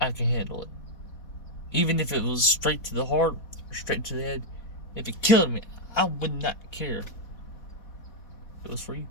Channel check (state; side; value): late; right; 4.1 ms